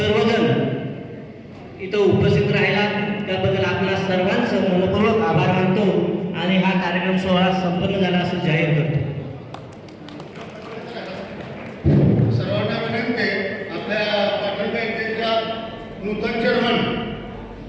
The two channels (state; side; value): identical; both; correlation 1.00